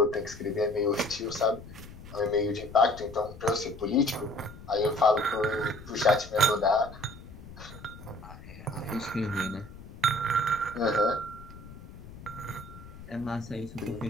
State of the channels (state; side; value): noise; left; rumble, 16 dB below the sound